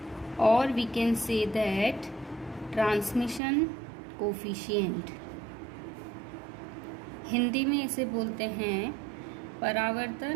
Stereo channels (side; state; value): left; drops out; at 3.4 s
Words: or we can say that transmission coefficient. Hindi में इसे बोलते हैं